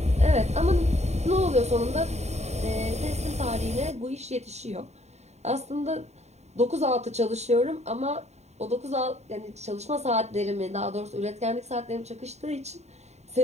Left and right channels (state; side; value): late; left; 0.32 ms